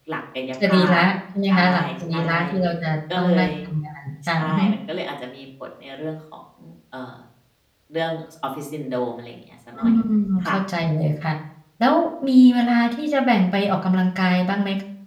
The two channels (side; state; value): both; identical; correlation 1.00